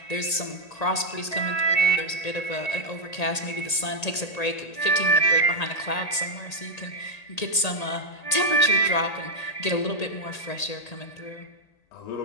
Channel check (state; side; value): late; right; 1.8 ms